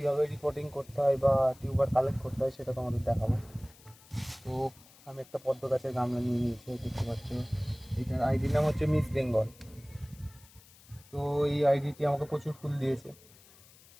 রিপোর্টিং করতে হয় বা টিউবার কালেক্ট করতে হয় সেটা তোমাদের দেখাবো। তো আমি একটা পদ্ম গাছের গামলা নিয়ে নিয়েছি, দেখতে পাচ্ছ। এটার আইডির নাম হচ্ছে মিস বেঙ্গল। তো এই আইডিটি আমাকে প্রচুর ফুল দিয়েছে।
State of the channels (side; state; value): left; noise; hiss, 25 dB below the sound